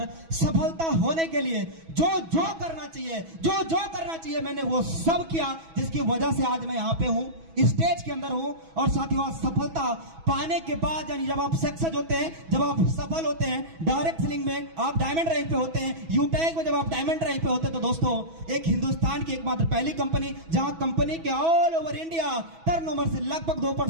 सफलता होने के लिए जो करना चाहिए मैंने वो सब किया, जिसकी वजह से आज मैं यहां पे हूं, स्टेज के अंदर हूं। और साथियों, आज सफलता पाने के बाद, यानी जब आप सक्सेस होते हैं, जब आप सफल होते हैं, डायरेक्ट सेलिंग में आप डायमंड रैंक पे होते हैं, यूटैग में जब आप डायमंड रैंक पे होते हैं, तो दोस्तों एक हिंदुस्तान की एकमात्र पहली कंपनी जहां कंपनी के ऑल ओवर इंडिया टर्नओवर से लगभग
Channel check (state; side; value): late; left; 6.1 ms